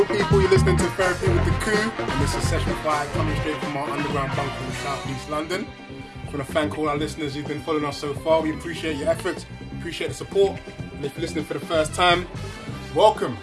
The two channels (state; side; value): identical; both; correlation 1.00